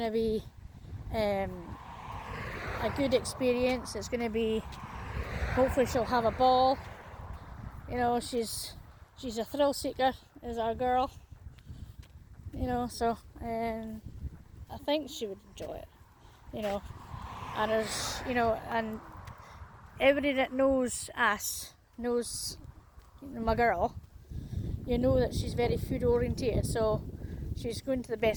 to be a good experience. It's going to be, hopefully she'll have a ball. You know, she's a thrill seeker, is our girl. You know, so I think she would enjoy it. You know, and there's, you know, and everybody that knows us knows my girl. You know that she's very food orientated, so she's going to the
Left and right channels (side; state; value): both; identical; correlation 1.00